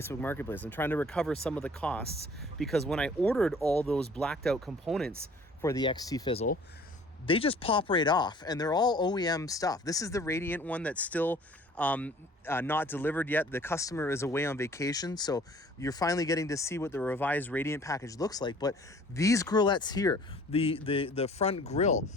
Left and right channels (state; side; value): normal; both; correlation 0.52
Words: Marketplace. I'm trying to recover some of the costs because when I ordered all those blacked out components for the XT Fizzle, they just pop right off and they're all OEM stuff. This is the Radiant one that's still not delivered yet. The customer is away on vacation, so you're finally getting to see what the revised Radiant package looks like. But these grillettes here, the front grille,